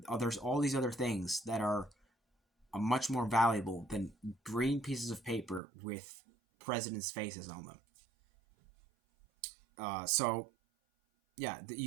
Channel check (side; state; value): left; drops out; at 5.6 s